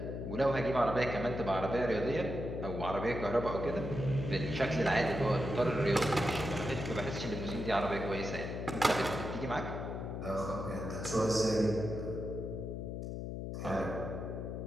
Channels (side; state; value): left; noise; hum, 5 dB below the sound